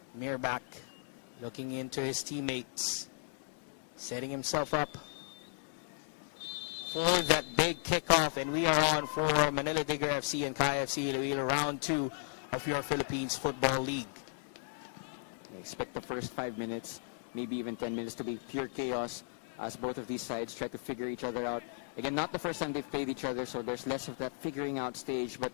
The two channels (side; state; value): right; silent; digital silence